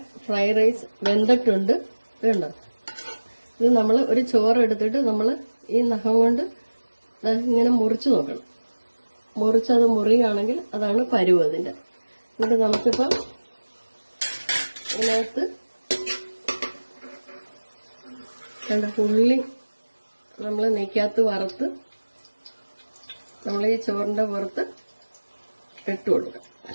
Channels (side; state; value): both; inverted; correlation -1.00